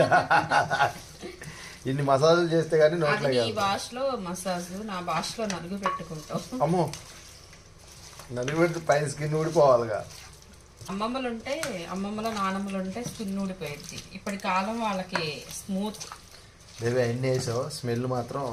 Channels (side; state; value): both; identical; correlation 1.00